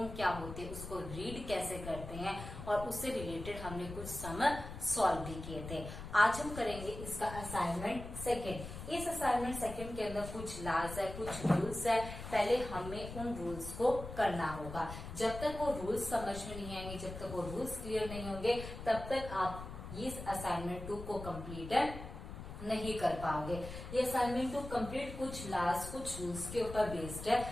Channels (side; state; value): left; noise; rumble, 10 dB below the sound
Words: क्या होती है, उसको रीड कैसे करते हैं और उससे रिलेटेड हमने कुछ सम सॉल्व भी किए थे। आज हम करेंगे इसका असाइनमेंट सेकेंड। इस असाइनमेंट सेकेंड के अंदर कुछ लॉज है, कुछ रूल्स है। पहले हमें उन रूल्स को करना होगा। जब तक वो रूल्स समझ में नहीं आएंगे, जब तक वो रूल्स क्लियर नहीं होंगे, तब तक आप इस असाइनमेंट 2 को कंप्लीट नहीं कर पाओगे। ये असाइनमेंट 2 कंप्लीट कुछ लॉज, कुछ रूल्स के ऊपर बेस्ड